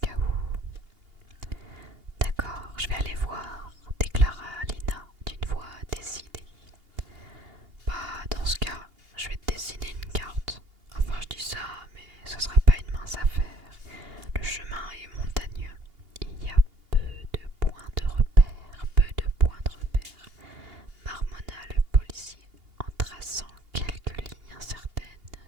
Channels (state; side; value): late; left; 2.8 ms